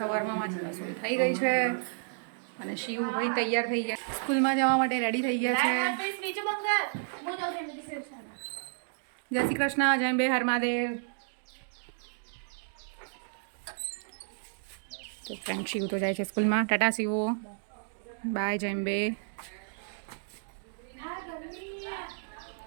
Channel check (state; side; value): silent; left; digital silence